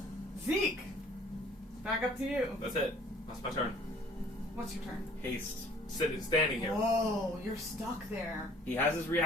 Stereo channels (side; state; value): both; normal; correlation 0.54